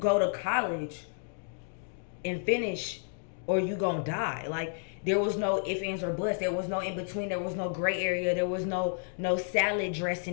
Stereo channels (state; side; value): silent; right; digital silence